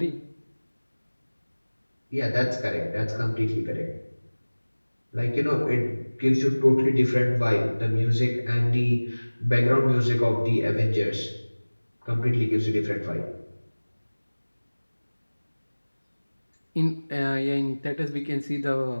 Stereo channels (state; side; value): inverted; both; correlation -1.00